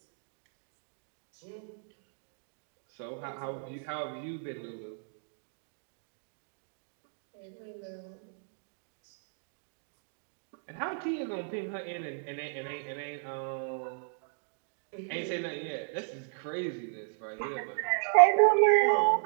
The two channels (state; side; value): silent; left; digital silence